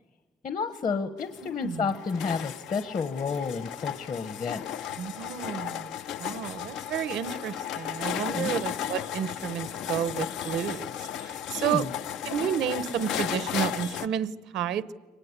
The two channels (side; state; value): both; normal; correlation 0.44